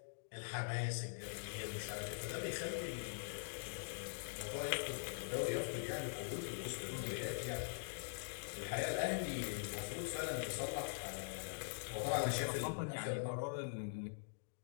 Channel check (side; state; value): right; silent; digital silence